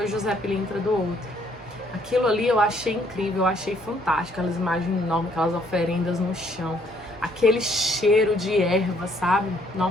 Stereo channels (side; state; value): both; normal; correlation 0.66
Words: José Pilintra do outro. Aquilo ali eu achei incrível, eu achei fantástico, aquelas imagens enormes, aquelas oferendas no chão, aquele cheiro de erva, sabe?